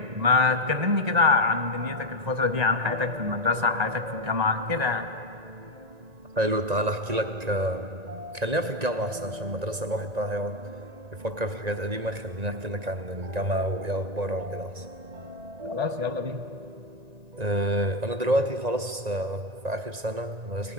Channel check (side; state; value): left; late; 1.9 ms